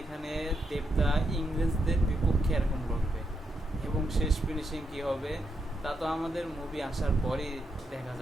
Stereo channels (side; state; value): both; normal; correlation 0.82